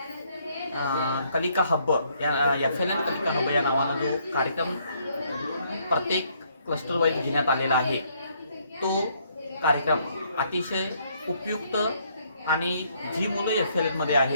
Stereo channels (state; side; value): inverted; both; correlation -0.68